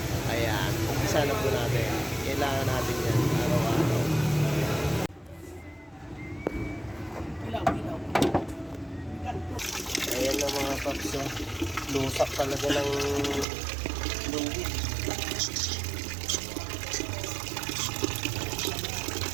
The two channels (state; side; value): drops out; left; at 13.5 s